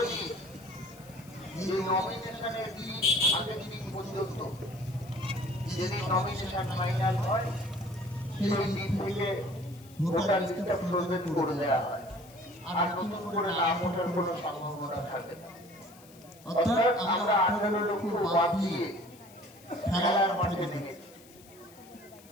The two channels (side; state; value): left; noise; hiss, 24 dB below the sound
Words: নিই যে নমিনেশনের দিন আগের দিন পর্যন্ত যেদিন নমিনেশন ফাইনাল হয় সেই দিন থেকে ভোটার লিস্টটা ফ্রোজেন করে দেওয়া হয়, আর নতুন করে নাম ওঠার কোনো সম্ভাবনা থাকে না। অর্থাৎ আমরা 18 লক্ষ বাদ দিয়ে খেলার মাঠে নেমেছি।